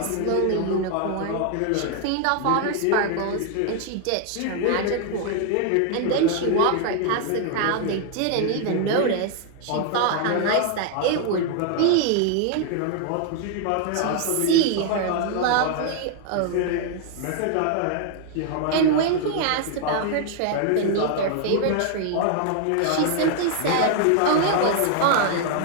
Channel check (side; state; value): both; different; correlation 0.00